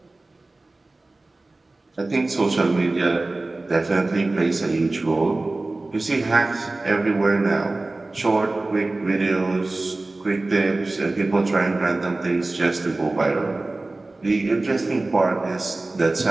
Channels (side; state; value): left; quieter; 3.1 dB